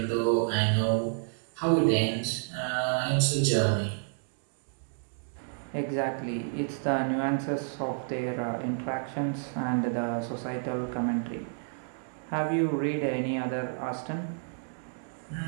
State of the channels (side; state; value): left; silent; digital silence